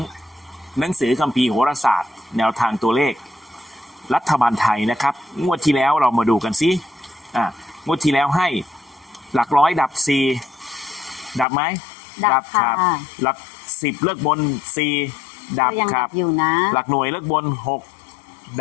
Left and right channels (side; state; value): right; drops out; at 11.5 s